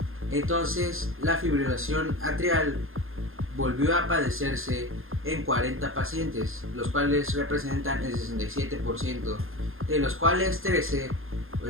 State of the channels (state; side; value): late; left; 0.60 ms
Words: Entonces la fibrilación atrial volvió a padecerse en 40 pacientes, los cuales representan el 67%, de los cuales 13 o